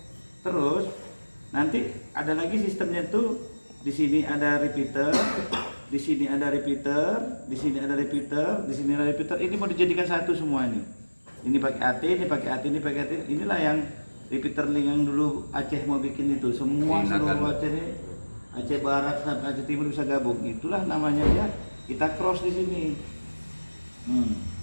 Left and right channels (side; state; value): both; inverted; correlation -1.00